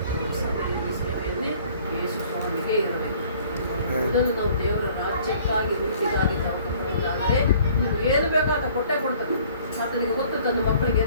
ನಮ್ಮ ಸಭೆಯಲ್ಲಿ, ಸೇವೆಯಲ್ಲಿ ಯೇಸು ಸ್ವಾಮಿಗೆ ಇರಬೇಕು. ಮೊದಲು ನಾವು ದೇವರ ರಾಜ್ಯಕ್ಕಾಗಿ, ನೀತಿಗಾಗಿ ತಗೊಂಡಾದರೆ ನೀವು ಏನು ಬೇಕೋ ಆತ ಕೊಟ್ಟೇ ಕೊಡ್ತಾರೆ. ಆತನಿಗೆ ಗೊತ್ತು ತನ್ನ ಮಕ್ಕಳಿಗೆ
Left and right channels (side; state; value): both; inverted; correlation -0.55